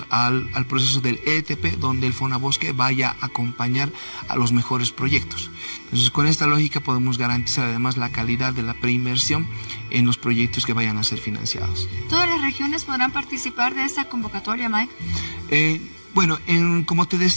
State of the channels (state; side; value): inverted; both; correlation -1.00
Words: al proceso del EDTP, donde el FONABOSQUE vaya a acompañar a los mejores proyectos. Entonces, con esta lógica podemos garantizar además la calidad de la preinversión en los proyectos que vayan a ser financiados. ¿Todas las regiones podrán participar de esta convocatoria, Mike? Bueno, como te